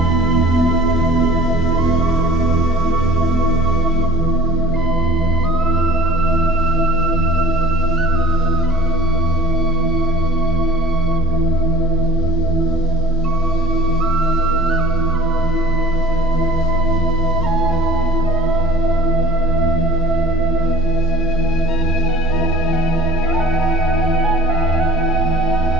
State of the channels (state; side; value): normal; both; correlation 0.45